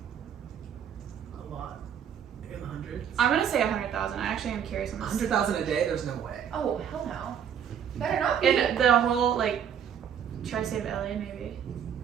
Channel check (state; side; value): quieter; left; 8.4 dB